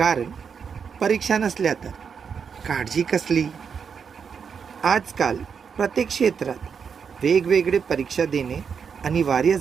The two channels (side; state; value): left; quieter; 6.5 dB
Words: परीक्षा नसल्या तर काळजी कसली. आजकाल प्रत्येक क्षेत्रात वेगवेगळे परीक्षा देणे अनिवार्य